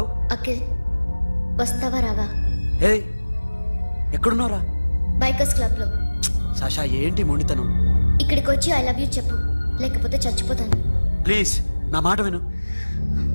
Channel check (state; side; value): inverted; both; correlation -1.00